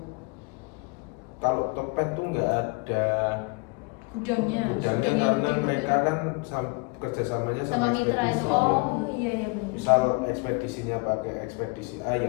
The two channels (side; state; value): right; quieter; 30.8 dB